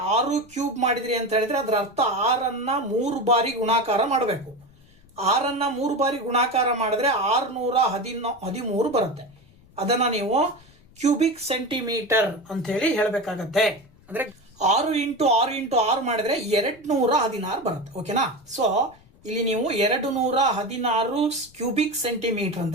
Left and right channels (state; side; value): noise; left; rumble, 28 dB below the sound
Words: 6 ಕ್ಯೂಬ್ ಮಾಡಿದ್ರಿ ಅಂತ ಹೇಳಿದ್ರೆ ಅದರ ಅರ್ಥ 6ಅನ್ನ 3 ಬಾರಿ ಗುಣಾಕಾರ ಮಾಡಬೇಕು. 6ಅನ್ನ 3 ಬಾರಿ ಗುಣಾಕಾರ ಮಾಡಿದ್ರೆ 613 ಬರುತ್ತೆ. ಅದನ್ನ ನೀವು ಕ್ಯೂಬಿಕ್ ಸೆಂಟಿಮೀಟರ್ ಅಂತ ಹೇಳಿ ಹೇಳಬೇಕಾಗತ್ತೆ. ಅಂದ್ರೆ 6 ಇಂಟು 6 ಮಾಡಿದ್ರೆ 216 ಬರುತ್ತೆ. ಓಕೆನಾ? ಸೊ ಇಲ್ಲಿ ನೀವು 216 ಕ್ಯೂಬಿಕ್ ಸೆಂಟಿಮೀಟರ್